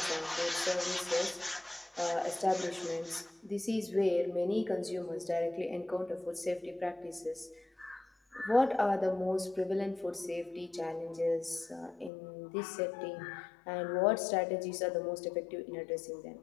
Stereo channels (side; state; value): right; drops out; at 12.1 s